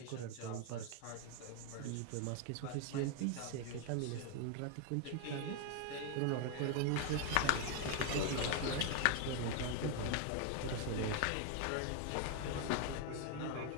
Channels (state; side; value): different; both; correlation 0.01